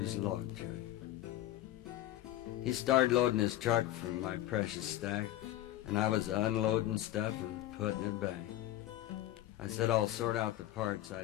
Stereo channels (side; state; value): right; quieter; 14.3 dB